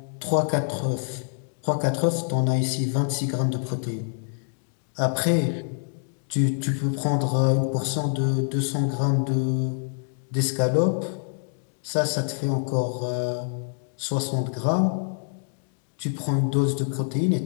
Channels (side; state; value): right; silent; digital silence